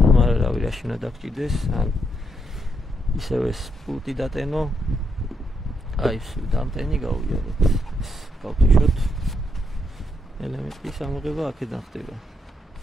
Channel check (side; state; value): both; normal; correlation 0.78